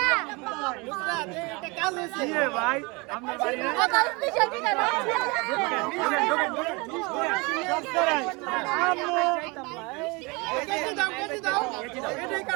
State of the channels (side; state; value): left; quieter; 27.2 dB